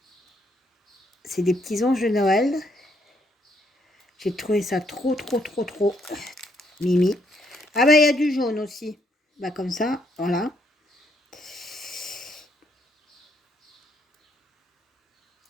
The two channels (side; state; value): both; normal; correlation 0.73